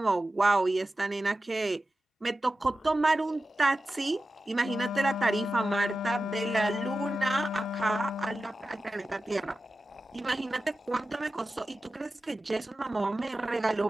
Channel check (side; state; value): both; normal; correlation 0.93